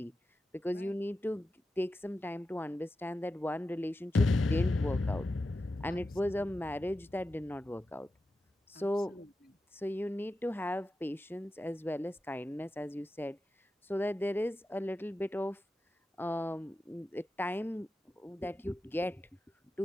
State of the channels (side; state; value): both; normal; correlation 0.91